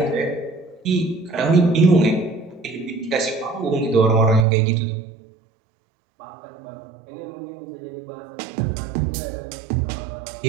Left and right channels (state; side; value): drops out; left; at 4.5 s